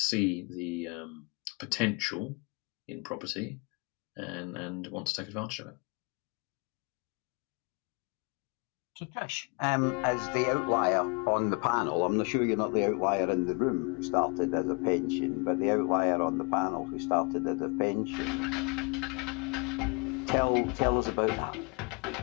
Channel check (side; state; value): right; quieter; 32.5 dB